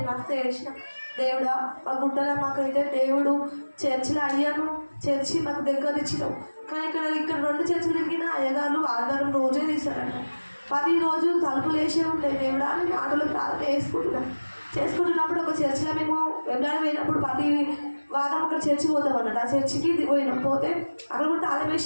మస్తు ఏడ్చిన. దేవుడా మా గుట్టలో మాకైతే దేవుడు చర్చిలో అయ్యాను, చర్చి మాకు దగ్గర ఇచ్చినావు. కానీ ఇక్కడ 2 చర్చిలు తిరిగిన అయ్యగారు ఆదివారం రోజే తీశారంట. 10 రోజులు తలుపులు వేసే ఉంటాయి. దేవుడా నేను ఆటలో ప్రార్థన చేసుకుంటున్నప్పుడు ఒక చర్చిలో మేము వెళ్ళాలి పోయినప్పుడు ప్రతి వారం ఒక చర్చి పోతాం అన్నట్టు. ఆ చర్చికి పోయినాం. పోతే అక్కడ కూడా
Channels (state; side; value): inverted; both; correlation -1.00